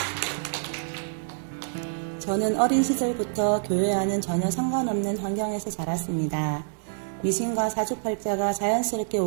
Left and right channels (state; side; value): silent; left; digital silence